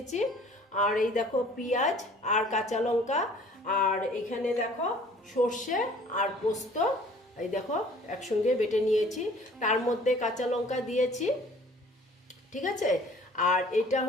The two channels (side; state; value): both; normal; correlation 0.52